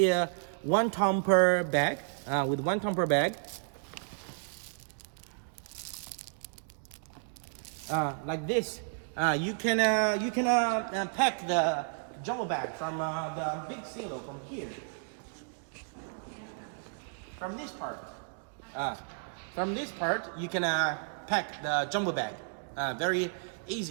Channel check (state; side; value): silent; left; digital silence